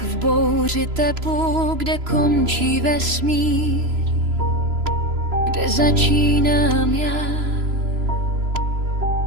v bouři tepu, kde končí vesmír, kde začínám já.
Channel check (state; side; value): late; left; 3.0 ms